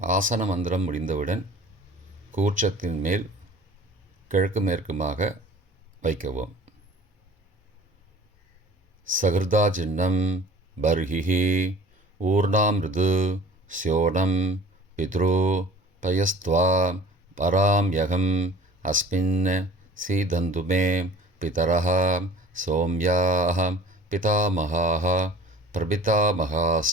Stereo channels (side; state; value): both; normal; correlation 0.45